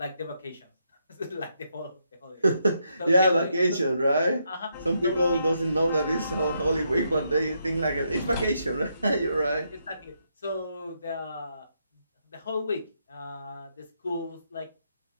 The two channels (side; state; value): both; inverted; correlation -0.79